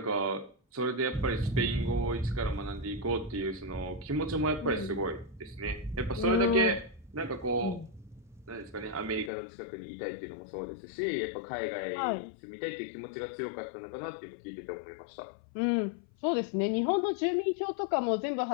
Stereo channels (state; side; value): drops out; right; at 9.3 s